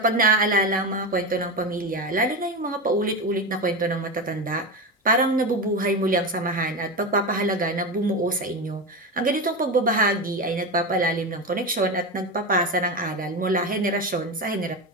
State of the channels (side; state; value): both; normal; correlation 0.18